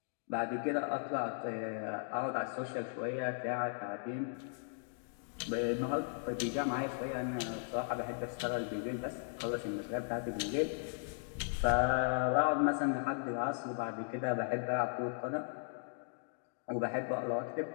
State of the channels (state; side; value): silent; right; digital silence